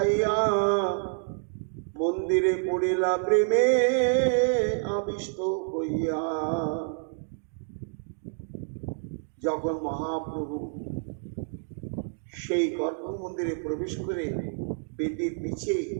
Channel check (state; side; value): silent; left; digital silence